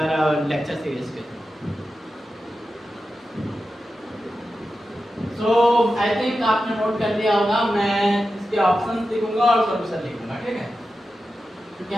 लेक्चर सीरीज के। सो आई थिंक आपने नोट कर लिया होगा, मैं इसके ऑप्शंस लिखूंगा और सॉल्यूशन लिखूंगा, ठीक है। क्योंकि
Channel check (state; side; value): normal; both; correlation 0.91